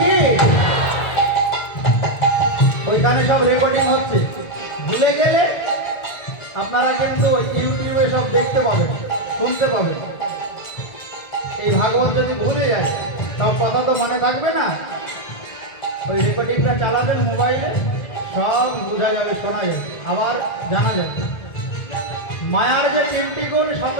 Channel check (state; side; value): late; right; 1.9 ms